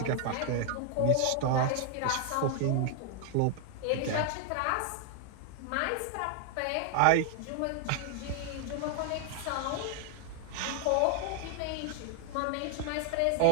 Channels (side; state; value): both; different; correlation 0.00